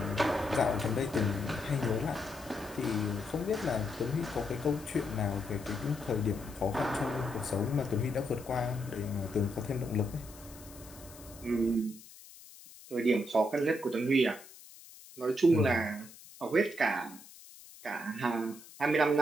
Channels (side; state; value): left; noise; hiss, 19 dB below the sound